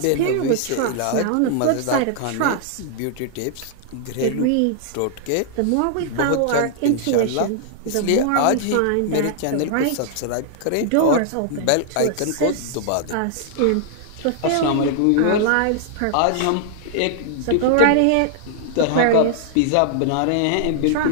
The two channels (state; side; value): different; both; correlation -0.01